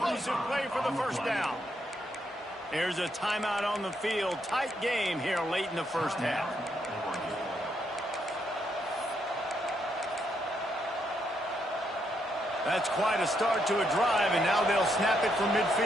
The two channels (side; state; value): both; normal; correlation 0.77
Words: play for the first down. There's a timeout on the field. Tight game here late in the first half. That's quite a start to a drive, and now they'll snap it from